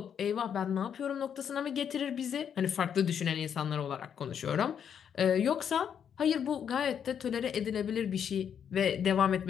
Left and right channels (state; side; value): quieter; right; 8.2 dB